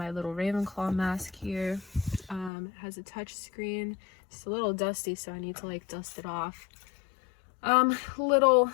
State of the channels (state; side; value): drops out; right; at 2.5 s